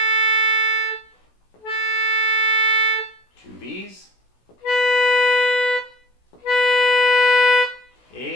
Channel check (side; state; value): right; late; 16 ms